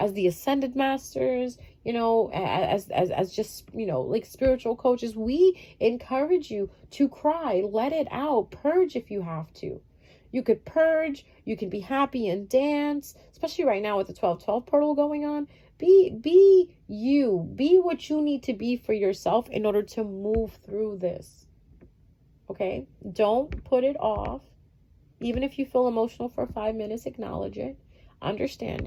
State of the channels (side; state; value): both; identical; correlation 1.00